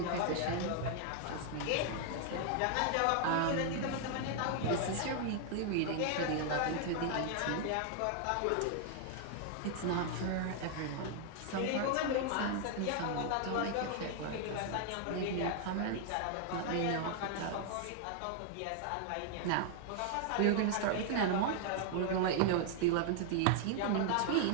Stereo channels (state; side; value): different; both; correlation 0.00